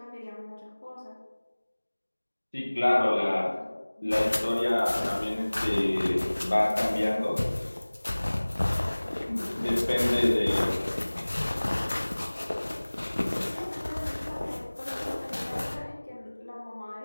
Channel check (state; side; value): inverted; both; correlation -1.00